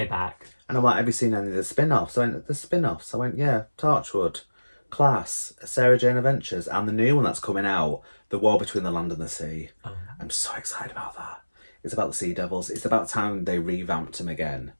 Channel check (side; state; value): both; inverted; correlation -1.00